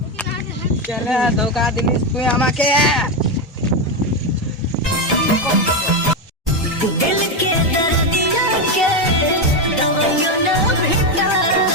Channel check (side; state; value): both; normal; correlation 0.10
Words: চলে ধোকা দিলিস তুই আমাকে।